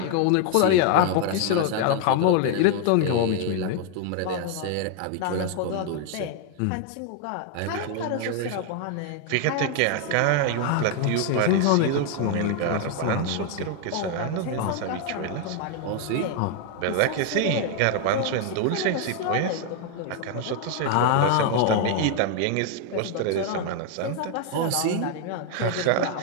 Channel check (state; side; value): different; both; correlation 0.00